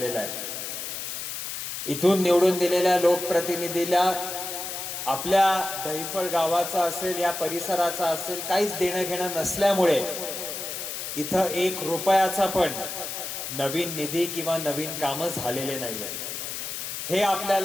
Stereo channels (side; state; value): left; noise; hiss, 6 dB below the sound